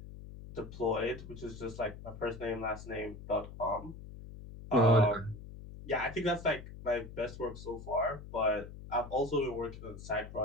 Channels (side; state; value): left; noise; hum, 13 dB below the sound